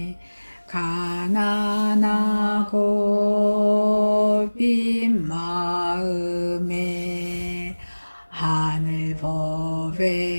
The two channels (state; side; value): inverted; both; correlation -1.00